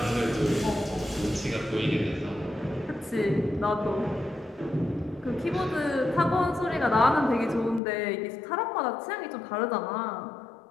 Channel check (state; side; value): drops out; right; at 7.8 s